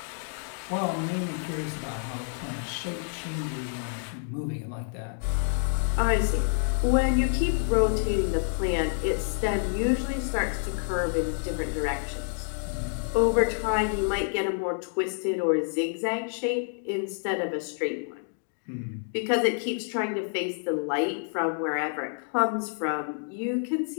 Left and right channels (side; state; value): right; silent; 58 dB below the other